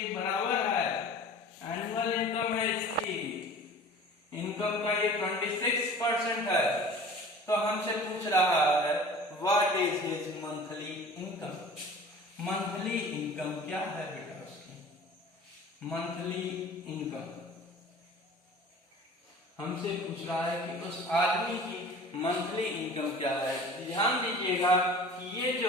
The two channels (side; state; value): both; normal; correlation 0.42